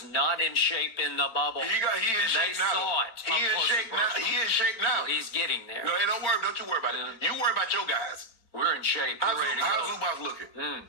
not in shape in the bubble. He in shape now. They saw it. He in shape now. He in shape now. Well, he's getting there. No, don't you worry about it. You worry about your guys. We're in shape. We're ready to go. How's Zubac looking?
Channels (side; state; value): right; late; 4.4 ms